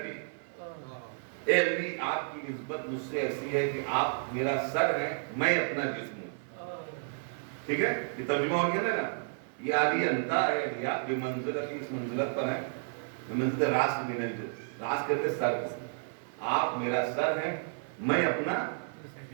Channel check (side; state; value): left; silent; 57 dB below the other